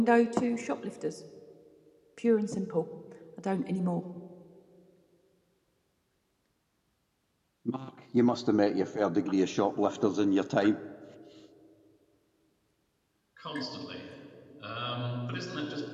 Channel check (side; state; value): both; identical; correlation 1.00